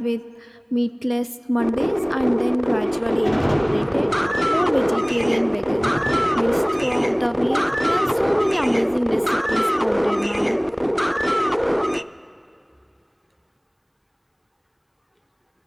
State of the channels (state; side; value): identical; both; correlation 1.00